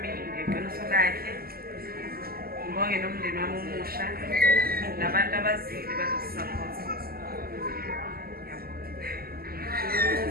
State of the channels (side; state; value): left; late; 0.44 ms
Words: ngeqiniso lakhe. Ngibonge nomndeni wami omusha nabantu abazili bazosisapota.